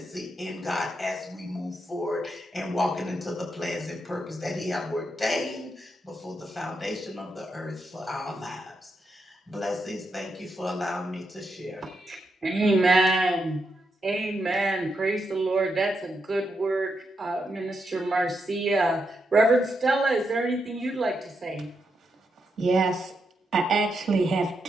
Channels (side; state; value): both; normal; correlation 0.83